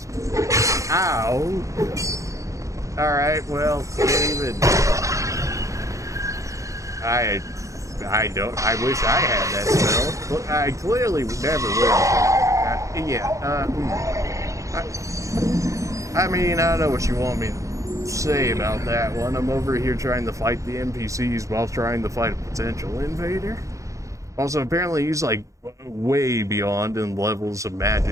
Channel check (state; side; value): late; left; 0.15 ms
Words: Ow! Alright, well, can't even. I wish I had that spell, but I clearly never will. I mean, I don't know what you want me to say about that one. I'm over here trying to fight the NPCs while trying to fight a potential invader. Also, apparently he's like way beyond in levels of